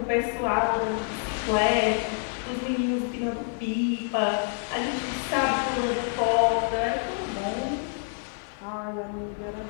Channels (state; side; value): silent; right; 55 dB below the other